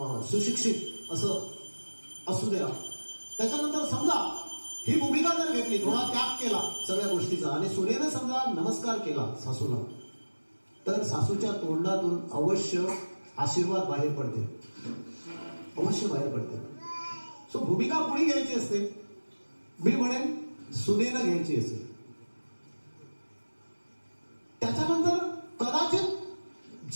सुशिक्षित असं असू द्या. त्याच्यानंतर समजा ही भूमिका जर घेतली, थोडा त्याग केला सगळ्या गोष्टीचा, आणि सुनेनं समजा नमस्कार केला सासूला, तर सासूच्या तोंडातून अवश्य आशीर्वाद बाहेर पडते, अवश्य बाहेर पडते. सो भूमिका कोणी घ्यायची असते? मी म्हणेन सुनेनं घ्यायची असते. त्याच्यानंतर कदाचित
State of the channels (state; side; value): inverted; both; correlation -1.00